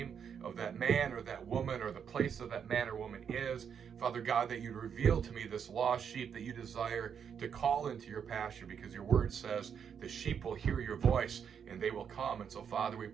of that man or that woman or the place of that man or woman is. Father God, that you'd reveal to me this lost sheep that you desire to call into your pasture, because your word says the sheep will hear your voice and they will come. And so Father, we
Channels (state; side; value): quieter; left; 7.5 dB